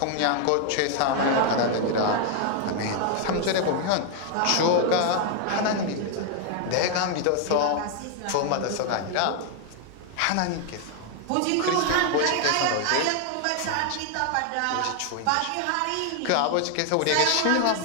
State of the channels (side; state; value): both; different; correlation 0.00